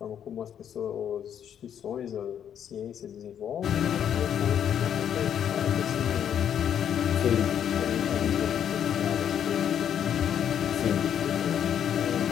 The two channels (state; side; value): quieter; right; 9.2 dB